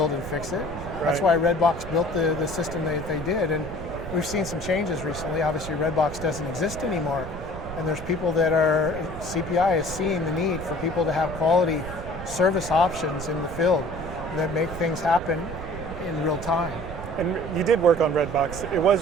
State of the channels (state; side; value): noise; right; rumble, 11 dB below the sound